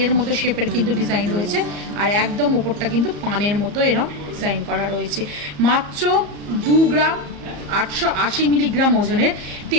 মতো শেপের কিন্তু ডিজাইন রয়েছে, আর একদম উপরটা কিন্তু পানের মতো এরকম ডিজাইন করা রয়েছে। মাত্র 2 গ্রাম 880 মিলিগ্রাম ওজনের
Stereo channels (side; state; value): left; late; 34 ms